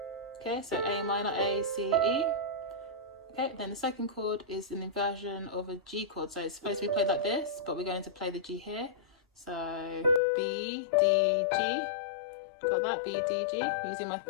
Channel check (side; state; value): right; drops out; at 10.2 s